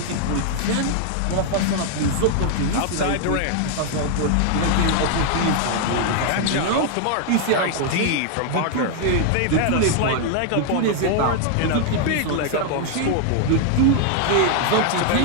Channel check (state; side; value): different; both; correlation 0.00